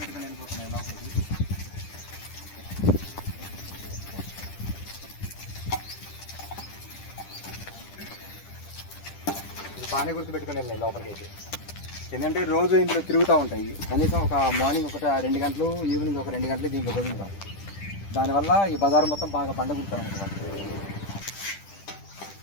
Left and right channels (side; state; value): right; late; 10 ms